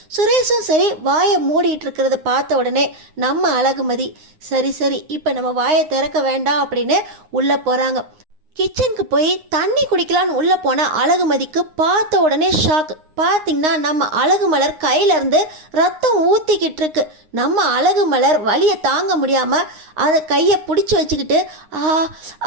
சுரேஷும் சரி வாயை மூடிட்டு இருக்கிறத பார்த்த உடனே நம்ம அழகுமதி சரி இப்போ நம்ம வாயை திறக்க வேண்டாம் அப்படின்னு உள்ளே போகிறாங்க. கிச்சனுக்கு போய் தண்ணி குடிக்கலான்னு உள்ளே போன அழகுமதிக்கு பார்த்த உடனே ஷாக். பார்த்திங்கன்னா நம்ம அழகுமலர் கையிலேருந்து ரத்தம் ஊற்றிக்கிட்டு இருக்கு. நம்ம அழகுமலர் வலியை தாங்க முடியாமல் அதை கையை பிடிச்சி வச்சுக்கிட்டு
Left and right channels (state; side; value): late; left; 9.6 ms